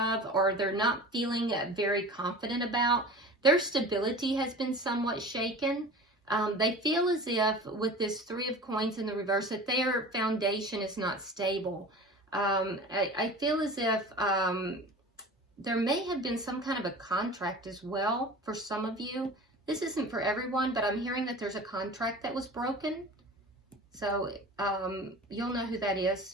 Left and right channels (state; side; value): normal; both; correlation 0.37